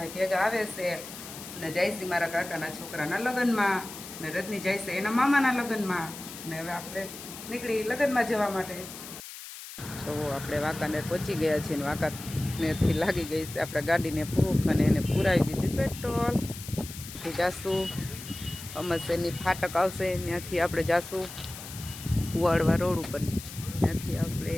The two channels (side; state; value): left; noise; hiss, 12 dB below the sound